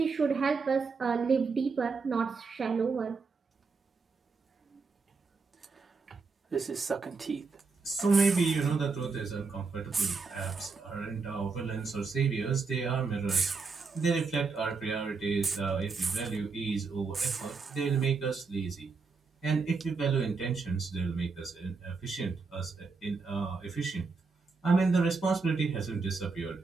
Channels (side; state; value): left; quieter; 4.5 dB